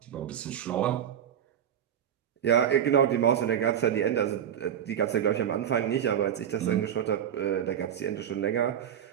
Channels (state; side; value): quieter; left; 9.4 dB